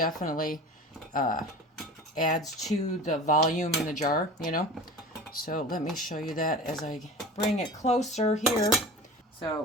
adds to the volume in the jar, you know? So let me show you that as I bring it closer here. So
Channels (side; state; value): both; normal; correlation 0.37